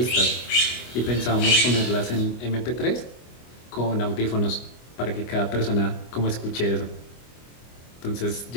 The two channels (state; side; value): late; right; 25 ms